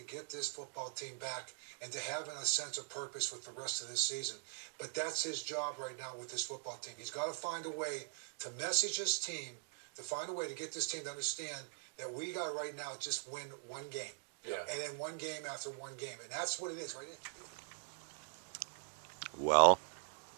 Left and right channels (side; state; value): left; silent; digital silence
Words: get this football team back and to have a sense of purpose with the rest of this season. But that's his job right now with this football team. He's got to find a way to message his team, to find a way to get this team to understand that we got right now just win one game. Yeah. And then one game after one game. And that's what it is right now. Well,